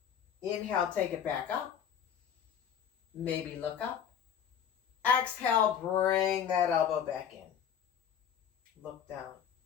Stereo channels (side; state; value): right; quieter; 8.7 dB